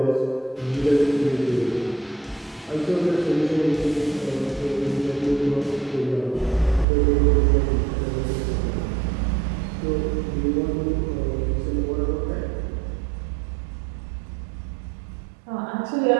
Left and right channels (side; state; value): left; drops out; at 6.9 s